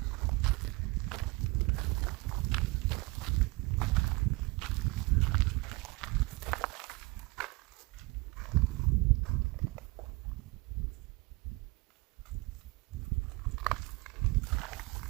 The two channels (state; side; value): quieter; left; 24.5 dB